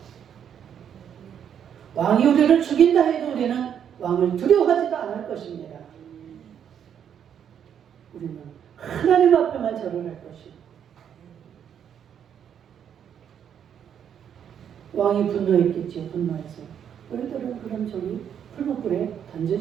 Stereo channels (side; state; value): left; quieter; 8.7 dB